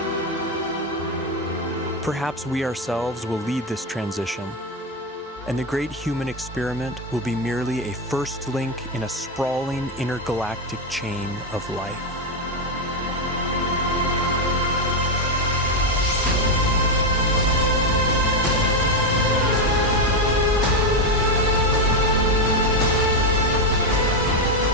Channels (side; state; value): both; normal; correlation 0.08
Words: Perhaps we ourselves will lead this transition, and the great human experiment will be merely a first link in a sprawling intergalactic chain of life.